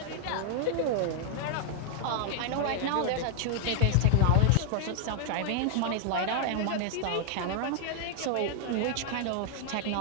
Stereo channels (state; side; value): different; both; correlation 0.00